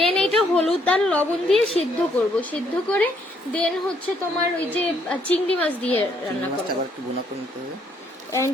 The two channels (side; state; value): both; normal; correlation 0.69